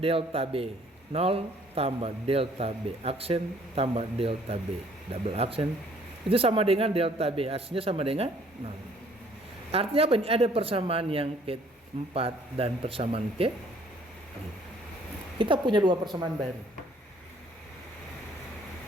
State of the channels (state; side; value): normal; both; correlation 0.60